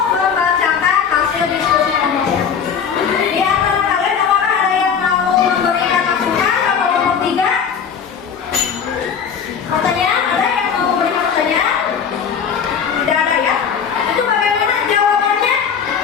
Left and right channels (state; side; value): quieter; right; 7.0 dB